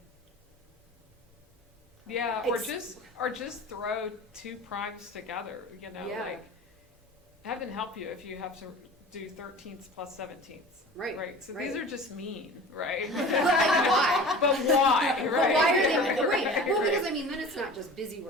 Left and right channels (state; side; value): normal; both; correlation 0.39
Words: Yeah, or just throw 2 primes together, Yeah. have them help you if you have do 13ths plus 17ths. Right, Right, so right. these are just mean, right? Why? But why, But right? why are they, right, Right, well, right. because I mean, then it's not just busy